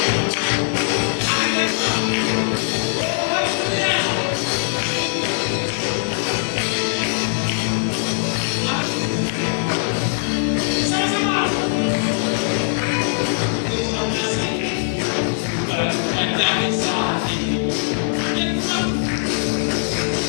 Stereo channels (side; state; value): right; silent; 65 dB below the other